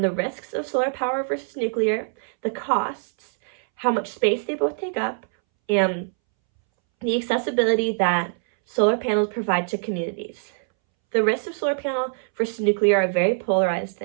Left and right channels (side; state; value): left; silent; 63 dB below the other